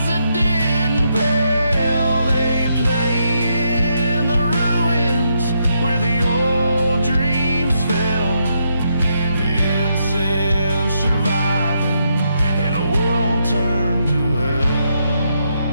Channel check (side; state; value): both; inverted; correlation -0.79